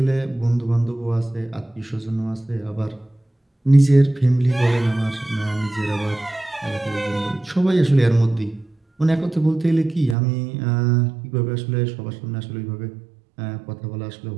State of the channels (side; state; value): left; drops out; at 10.2 s